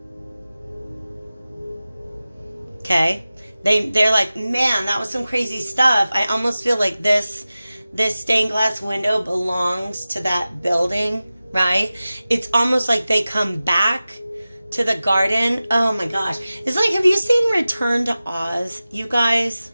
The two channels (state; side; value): inverted; both; correlation -0.96